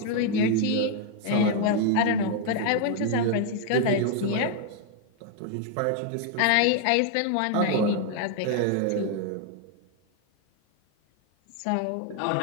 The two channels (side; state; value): both; different; correlation 0.00